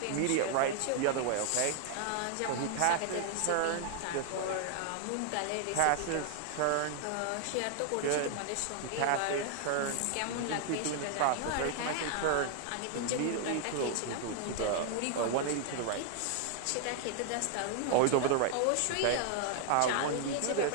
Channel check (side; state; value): both; different; correlation 0.00